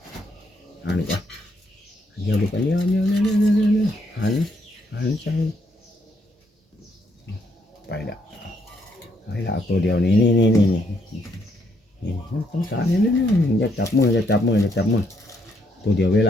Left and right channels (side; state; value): both; normal; correlation 0.73